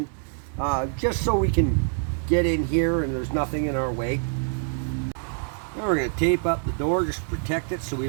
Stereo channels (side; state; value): left; silent; digital silence